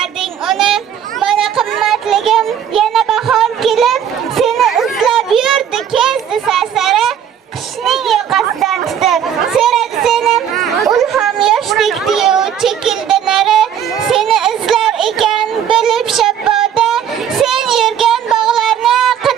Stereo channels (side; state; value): left; quieter; 9.1 dB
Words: uni. Mana qimmatligim yana bahor kelib seni izlab yurdi kezdi sarsara, qishning yoqasidan tutib so'radi seni, ulham yoshdek diyu chekildi nari. Seni izlar ekan bo'lib shabboda, sen yurgan bog'larni